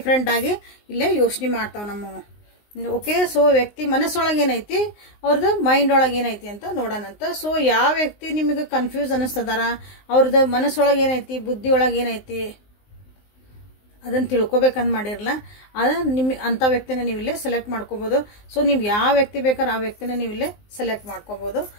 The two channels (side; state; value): right; late; 19 ms